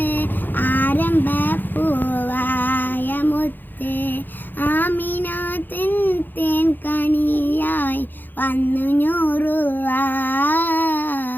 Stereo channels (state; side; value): late; right; 0.090 ms